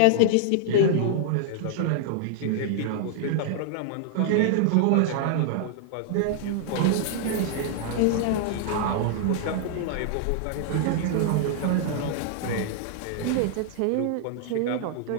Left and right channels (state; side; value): different; both; correlation -0.01